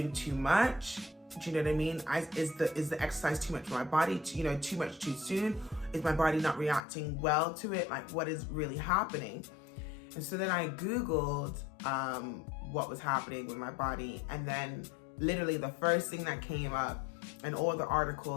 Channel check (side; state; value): right; drops out; at 6.8 s